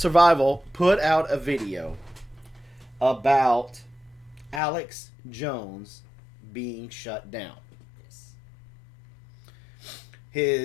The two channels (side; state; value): right; drops out; at 4.6 s